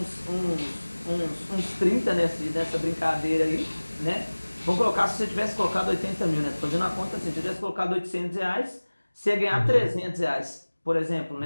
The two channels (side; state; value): both; inverted; correlation -1.00